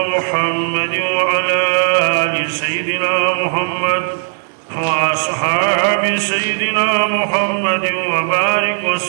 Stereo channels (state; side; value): silent; left; 62 dB below the other